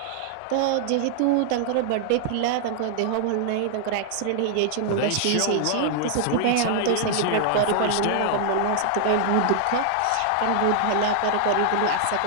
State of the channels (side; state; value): both; different; correlation -0.01